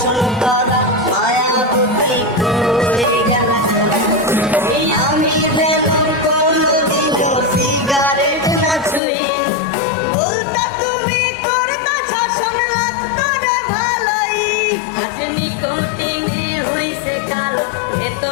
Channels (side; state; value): right; drops out; at 9.0 s